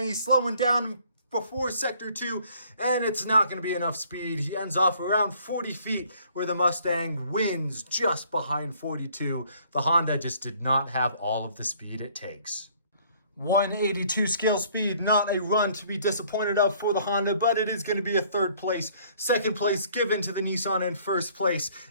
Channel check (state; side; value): inverted; both; correlation -0.59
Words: He's slowing down before sector 2, and it's not going to be enough speed. He ends off around 40 feet, where the Mustang wins just behind 42. The Honda just did not have all of the speed it takes. 182 scale speed, not a run to be disappointed of for the Honda, but it is going to be a 3rd place. 2nd place given to the Nissan, and 1st place